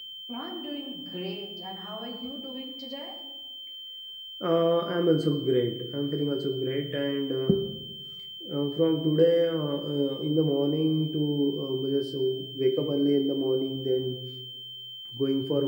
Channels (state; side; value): identical; both; correlation 1.00